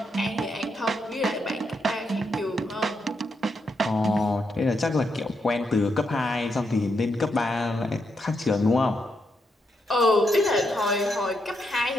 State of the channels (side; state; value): both; normal; correlation 0.81